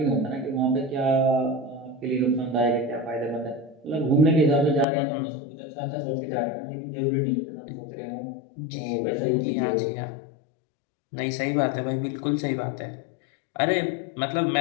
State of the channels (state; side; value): drops out; right; at 4.9 s